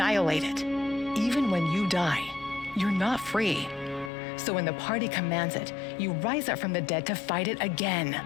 it. Even when you die, you're not free. So when the party commands it, you rise up from the dead to fight it again.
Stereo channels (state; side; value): drops out; right; at 4.1 s